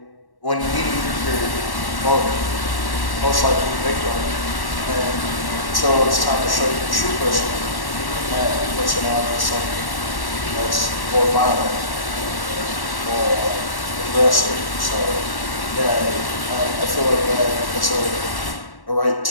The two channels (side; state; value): right; late; 1.1 ms